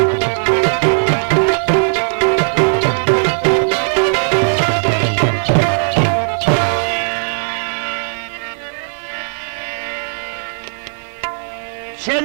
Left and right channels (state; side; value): silent; left; 56 dB below the other